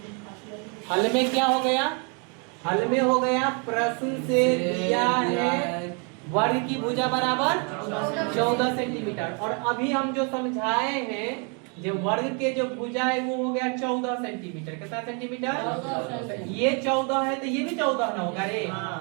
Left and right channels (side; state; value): left; quieter; 36.7 dB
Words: हल में क्या हो गया, हल में हो गया प्रश्न से दिया है वर्ग की भुजा बराबर 14 सेंटीमीटर। और अभी हम जो समझाए हैं जो वर्ग के जो भुजा है वो हो गया 14 सेंटीमीटर। कितना सेंटीमीटर, ये 14 है तो ये भी 14 ना होगा रे,